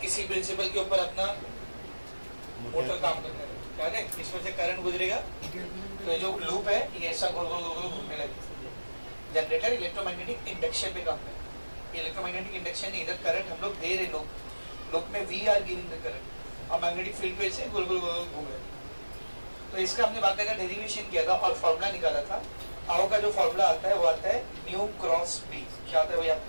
इसी प्रिंसिपल के ऊपर अपना मोटर काम करता है, क्या है, इसमें से करंट गुजरेगा, तो जो लूप है ये ऐसा गोल गोल गोल घूमने लगेगा। जनरेटर इलेक्ट्रोमैग्नेटिक इंडक्शन पे काम है, इलेक्ट्रोमैग्नेटिक इंडक्शन नहीं, इधर करंट हम लोग दे रहे, लूप में we are giving the current, और मैग्नेटिक फील्ड पे से गोल गोल गोल घूम रहे। तो इसका हमने बाकायदा डेरिवेशन किया था और फॉर्मूला निकाला था। आओ का जो फॉर्मूला आता है वो आता है म्यू क्रॉस बी, क्या आता है वो याद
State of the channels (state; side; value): inverted; both; correlation -1.00